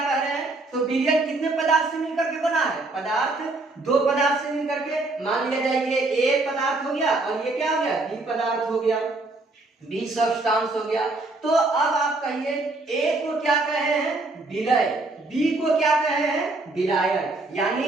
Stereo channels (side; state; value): left; quieter; 3.2 dB